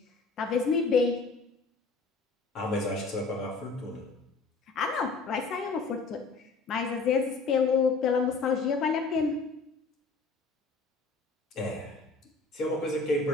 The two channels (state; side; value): quieter; right; 4.1 dB